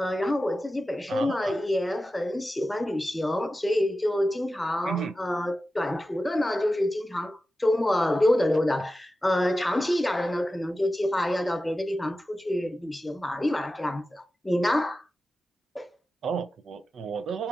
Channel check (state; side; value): normal; both; correlation 0.93